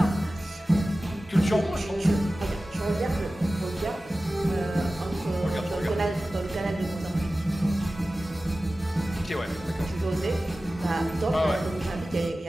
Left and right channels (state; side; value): normal; both; correlation 0.96